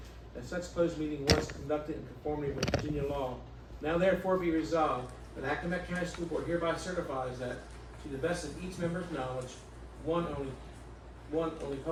that such closed meeting was conducted in conformity with Virginia law. Now therefore be resolved that Accomack County School Board hereby certifies that, to the best of each member's knowledge, only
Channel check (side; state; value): both; identical; correlation 1.00